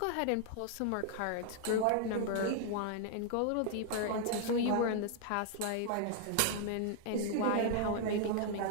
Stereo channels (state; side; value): different; both; correlation 0.00